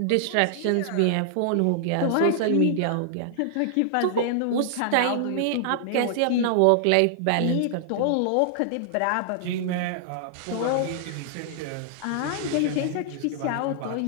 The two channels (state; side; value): different; both; correlation -0.01